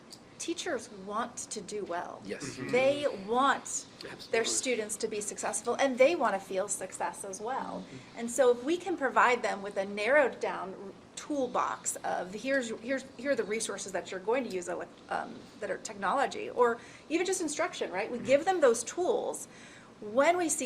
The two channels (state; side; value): identical; both; correlation 1.00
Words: teachers want to do well. Yes. They want Absolutely. their students to be successful, and they want to feel success as well. And so if we can provide them with a narrowed down toolbox of here are the resources that you're going to use that are technology, or even just instruction, right? We give them those tools. When we